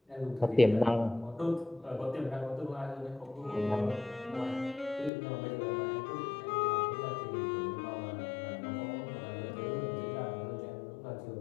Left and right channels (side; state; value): right; drops out; at 5.1 s